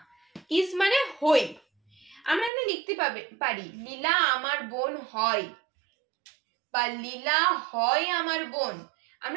ইজ মানে হই। আমরা এখানে লিখতে পারি লীলা আমার বোন হয়, বা লীলা হয় আমার বোন,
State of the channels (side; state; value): left; drops out; at 2.5 s